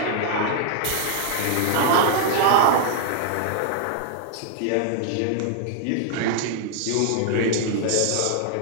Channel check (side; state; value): both; different; correlation 0.00